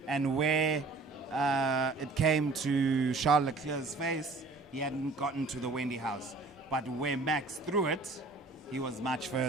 and where it came to Charles Leclerc's face, he hadn't gotten to the Wendy house. But where Max threw it, he was much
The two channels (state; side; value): quieter; left; 3.6 dB